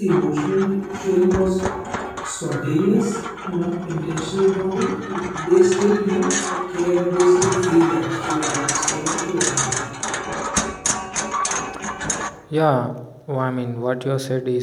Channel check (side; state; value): both; identical; correlation 1.00